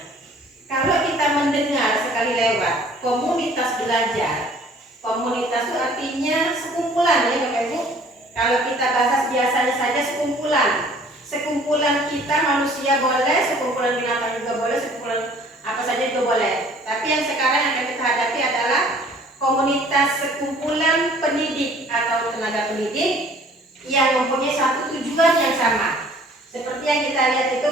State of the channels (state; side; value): normal; both; correlation 0.54